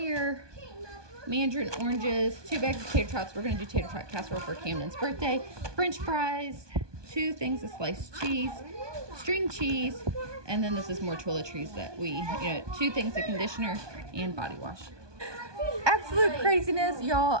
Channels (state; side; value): late; left; 1.2 ms